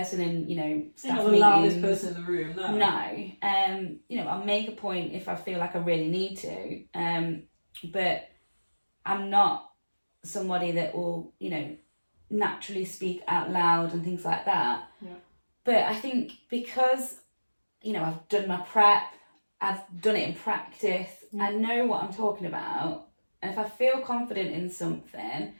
in, you know, staff You're not the loudest person in the room, no. You know, I'll make a point if I feel like I really need to, but I'm not somebody that will, you know, naturally speak out loud and things like that. But I think because, you know, I've done my prep, I've done it in practice, I know what I'm talking about, and if I feel confident in something,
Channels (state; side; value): inverted; both; correlation -1.00